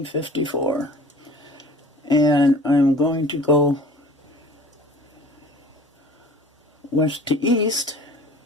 And I'm going to go west to east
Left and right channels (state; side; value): normal; both; correlation 0.45